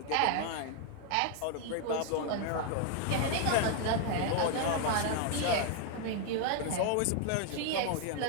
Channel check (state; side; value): different; both; correlation 0.00